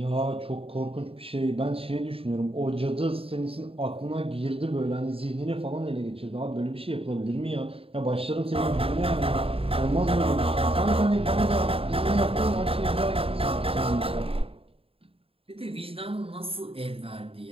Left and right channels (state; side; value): late; left; 0.27 ms